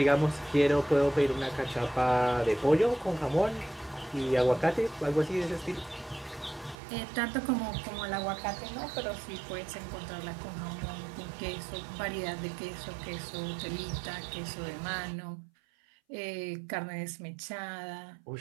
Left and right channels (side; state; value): left; drops out; at 6.8 s